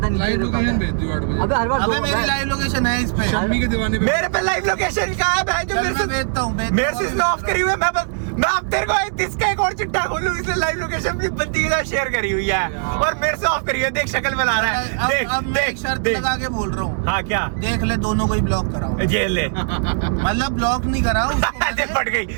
लाइव लोकेशन भेज दियो 8 बजे। अबे हर बार अबे मेरी लाइव लोकेशन है इस पे। शम्मी के दीवाने पे। मेरे पे लाइव लोकेशन का है भाई, जो चल मैं भेजता हूँ। मेरे से ऑफ करी हुई है। मैं अब तेरे को इसका एक और चिट्ठा खोलूं, इसलिए लाइव लोकेशन भी बंदी के साथ शेयर कॉन्फ़िगर करी हुई है और मेरे से ऑफ करी है। देख शक्ल बना रहा है। देख अब मैं एक शर्त लगा के बोल रहा हूँ। हाँ क्या? देख ले, दोनों को ही ब्लॉक कराओ। जेल ले। मतलब ब्लॉक नहीं करा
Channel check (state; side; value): silent; left; digital silence